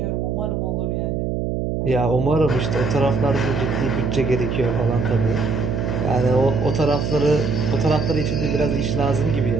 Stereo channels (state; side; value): noise; right; hum, 1 dB below the sound